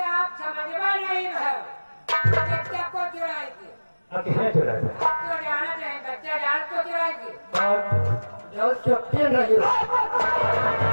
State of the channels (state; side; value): inverted; both; correlation -1.00